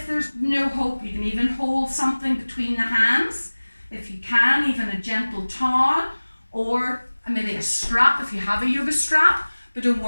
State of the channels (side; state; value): both; inverted; correlation -1.00